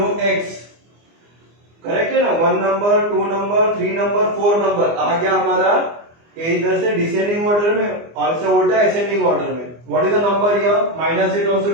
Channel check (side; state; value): left; late; 24 ms